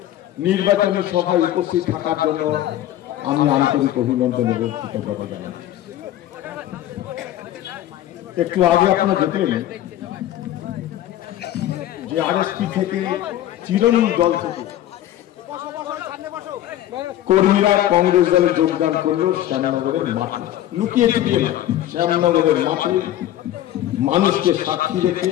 নির্বাচনী সভায় উপস্থিত থাকার জন্য আমি আন্তরিক অভিনন্দন এবং কৃতজ্ঞতা জানাচ্ছি। একটু আগে আপনারা দেখলেন যে আরএসপি থেকে তৃণমূল দল থেকে কর্মীরা কংগ্রেস দলে যোগদান করলো শ্যামনগরের মাঠে, লুকিয়ে লুকিয়ে শ্যামনগরের মাঠে মানুষকে সাক্ষী রেখে।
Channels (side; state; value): right; quieter; 13.0 dB